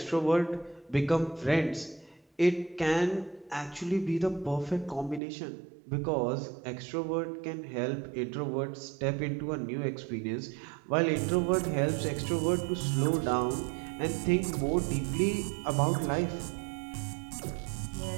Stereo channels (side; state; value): left; drops out; at 5.2 s